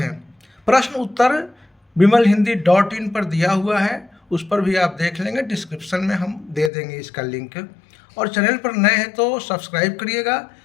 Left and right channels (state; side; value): drops out; right; at 6.7 s